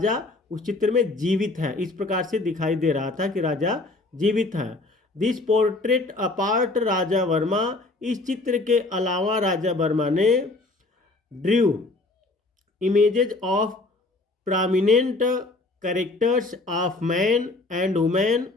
उस चित्र में जीवित है। इस प्रकार से दिखाई दे रहा था कि राजा जीवित है। This portrait apart Raja Varma, इस चित्र के अलावा राजा वर्मा ने drew images of prominent characters of man and women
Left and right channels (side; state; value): right; quieter; 3.1 dB